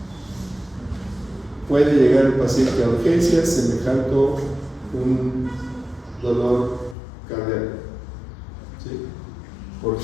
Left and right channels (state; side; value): drops out; right; at 7.0 s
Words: Puede llegar el paciente a urgencias semejante un dolor cardíaco, ¿sí? ¿Por